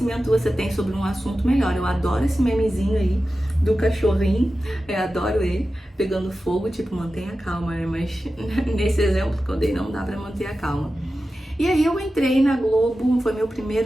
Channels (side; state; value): both; normal; correlation 0.93